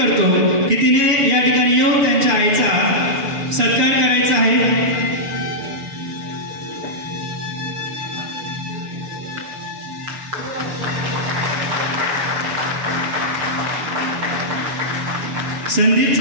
की तिने या ठिकाणी येऊन त्यांच्या आईचा सत्कार करायचा आहे।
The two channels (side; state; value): left; late; 6.8 ms